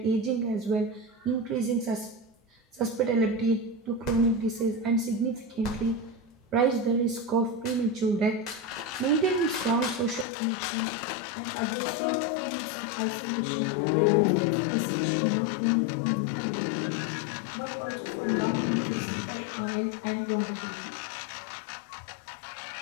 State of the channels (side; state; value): right; drops out; at 10.2 s